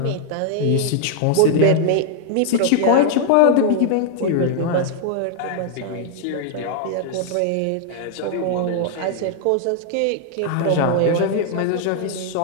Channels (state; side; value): different; both; correlation 0.00